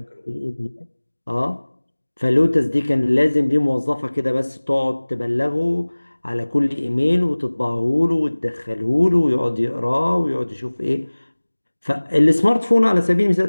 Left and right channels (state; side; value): inverted; both; correlation -1.00